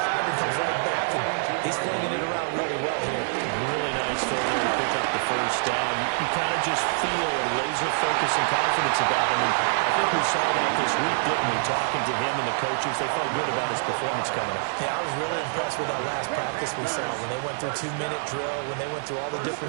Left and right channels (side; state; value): left; silent; 61 dB below the other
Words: and comes right back, and he's flinging it around really well here. Really nice throw there to pick up the first down. You kind of just feel a laser focus and confidence about him, and I think we saw that this week, didn't we? Talking to him and the coaches, they felt good about his performance coming up. Yeah, I was really impressed with that last practice we saw when they went through 2-minute drill, when they went through all the